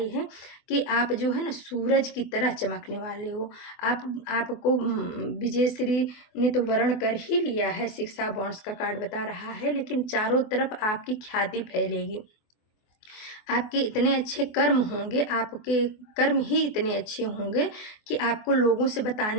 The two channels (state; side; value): late; right; 24 ms